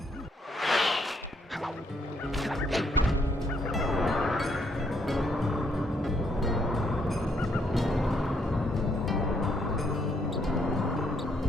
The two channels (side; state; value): both; normal; correlation 0.72